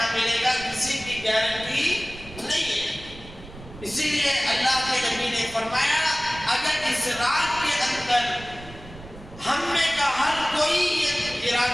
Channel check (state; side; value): noise; right; rumble, 17 dB below the sound